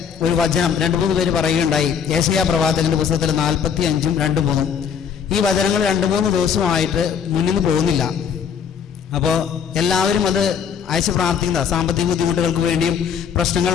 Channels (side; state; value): right; quieter; 7.4 dB